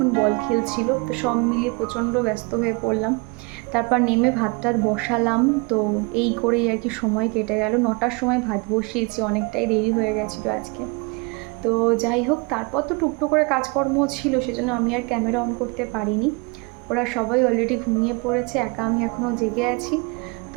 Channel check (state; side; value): quieter; left; 30.0 dB